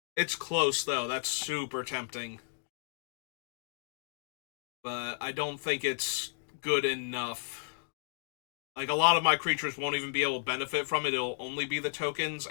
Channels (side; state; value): right; silent; digital silence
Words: It's close, though. That's super tempting. But I don't think it's good enough. Like, a lot of my creatures won't even be able to benefit from it. It'll only be the tokens